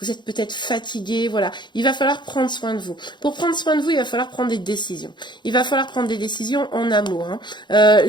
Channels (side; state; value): right; late; 0.22 ms